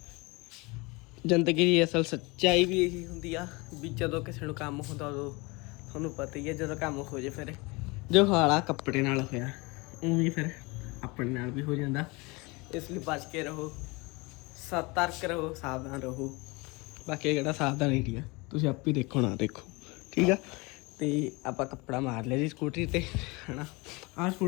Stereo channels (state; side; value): quieter; right; 25.9 dB